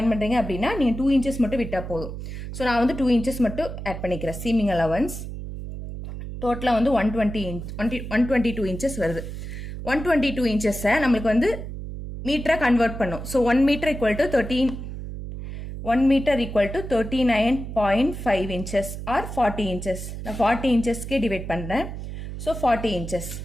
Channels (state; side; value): noise; right; hum, 8 dB below the sound